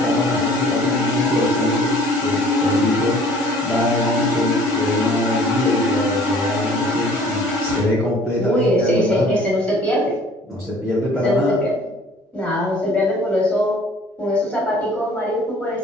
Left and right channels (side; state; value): both; normal; correlation 0.53